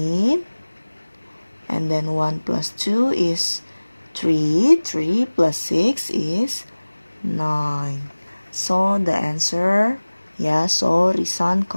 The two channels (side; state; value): both; inverted; correlation -1.00